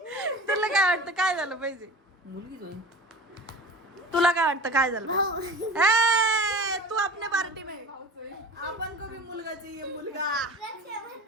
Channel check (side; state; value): both; normal; correlation 0.37